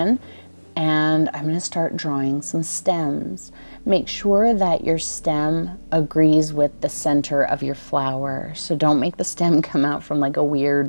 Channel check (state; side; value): inverted; both; correlation -1.00